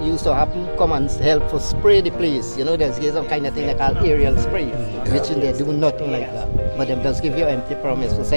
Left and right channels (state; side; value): inverted; both; correlation -1.00